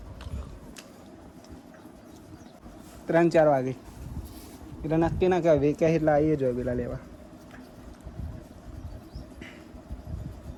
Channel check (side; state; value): both; identical; correlation 1.00